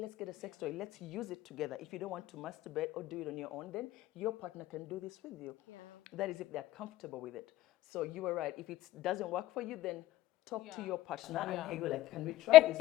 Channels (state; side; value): quieter; right; 15.4 dB